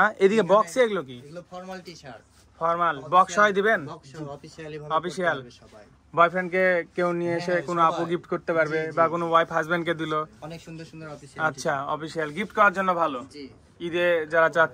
এদিকে বক্সে এগুলো কি? এগুলো ফর্মাল টি-শার্ট, ফর্মাল বক্স হয় দিবেন? অফিশিয়ালি অফিসিয়াল সবাই। বয়ফ্রেন্ডকে কেউ নিয়ে এসে কোনো আপু গিফট করতে পারবে, বা কোনো ওয়াইফ হাজবেন্ডকে দিল। অনেক সুন্দর সুন্দর অফিসিয়াল। আচ্ছা, অফিসিয়াল গিফট করার জন্য ভালো, ঈদে যারা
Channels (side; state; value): both; identical; correlation 1.00